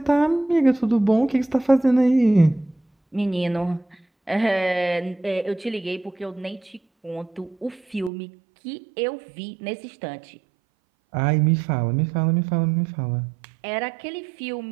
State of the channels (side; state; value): left; drops out; at 8.1 s